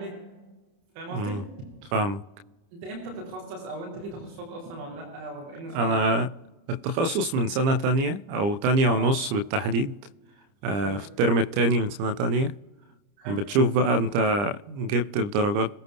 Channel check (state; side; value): late; left; 30 ms